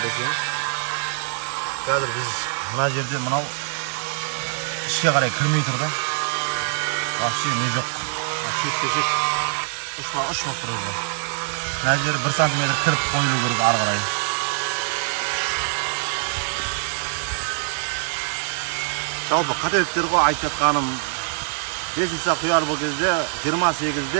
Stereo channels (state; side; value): silent; left; digital silence